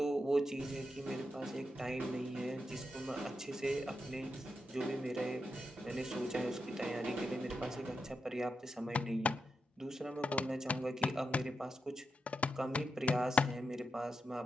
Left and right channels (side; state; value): both; normal; correlation 0.86